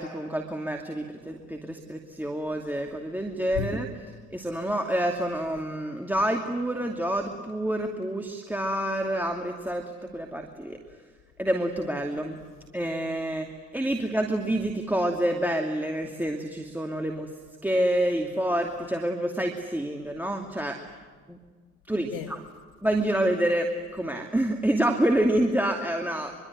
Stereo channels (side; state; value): both; normal; correlation 0.82